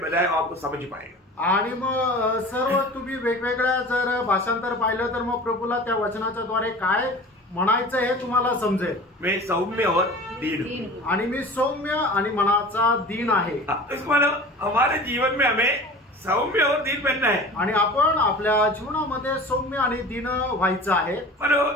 आपको समझ पाएगा. आणि मग सर्व तुम्ही वेगवेगळ्या जर भाषांतर पाहिलं तर मग प्रभूला त्या वचनाच्या द्वारे काय म्हणायचं हे तुम्हाला समजेल. मैं सौम्य और दीन हूँ, आणि मी सौम्य आणि मनाचा दीन आहे. इसको मतलब हमारे जीवन में हमें सौम्य और दीन बनना है. आणि आपण आपल्या जीवनामध्ये सौम्य आणि दीन व्हायचं आहे.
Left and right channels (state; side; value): normal; both; correlation 0.39